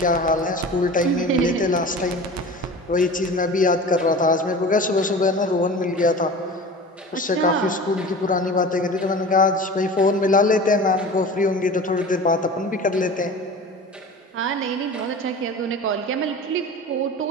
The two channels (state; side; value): normal; both; correlation 0.36